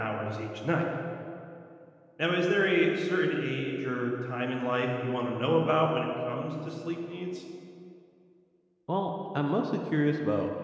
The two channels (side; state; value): both; identical; correlation 1.00